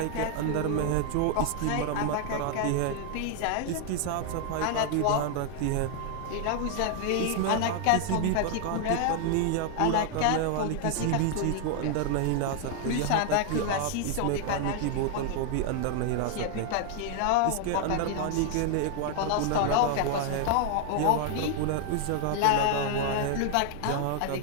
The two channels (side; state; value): both; different; correlation 0.00